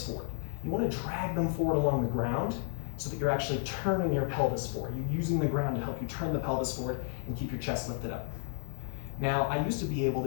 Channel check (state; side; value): silent; right; digital silence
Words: forward. You want to drag them forward along the ground so that you're actually turning your pelvis forward. You're using the ground to help you turn the pelvis forward and keep your chest lifted up. Now, I used to be able